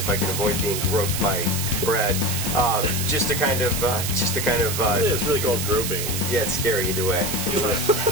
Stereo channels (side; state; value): right; noise; hiss, 3 dB below the sound